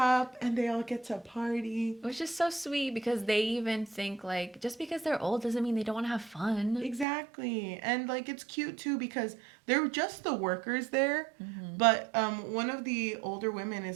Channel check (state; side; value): drops out; left; at 7.1 s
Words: and they all get to party. Which is so sweet because they even think like just because they're old doesn't mean they don't want to have fun. Exactly. And like it's cute too because they're just the workers there. But one of the older women